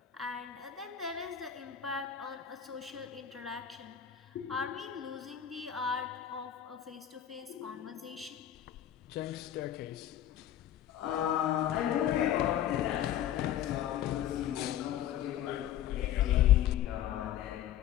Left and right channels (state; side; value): quieter; right; 10.9 dB